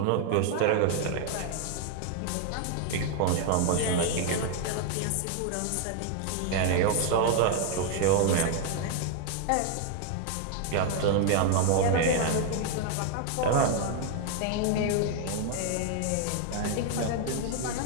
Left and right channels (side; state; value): both; different; correlation 0.00